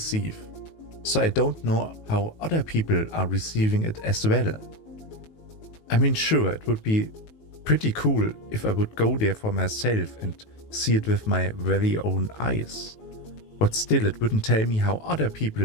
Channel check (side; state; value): right; late; 19 ms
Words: So I don't know how other people are receiving it as well. I mean, sure, it would be pretty cool if I would go there for myself and see it with my very own eyes. But still, it wouldn't tell me how other